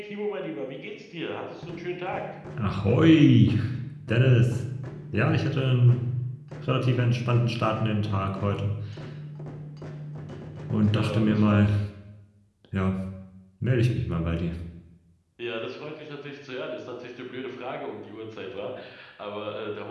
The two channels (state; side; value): identical; both; correlation 1.00